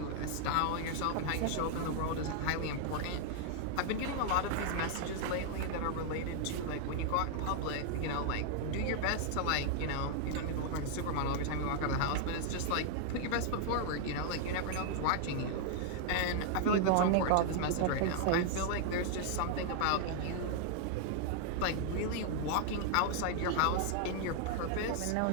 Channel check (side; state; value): both; different; correlation 0.00